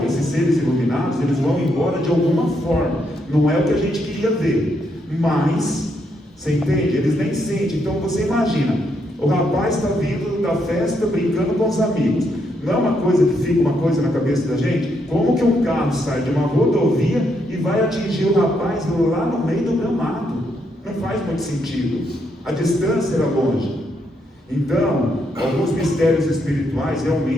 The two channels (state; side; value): normal; both; correlation 0.77